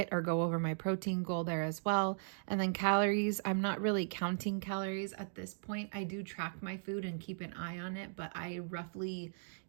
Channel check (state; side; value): silent; left; digital silence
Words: over my protein goal there as well. And then calories, I'm not really counting calories at this point. I do track my food and keep an eye on it, but I roughly,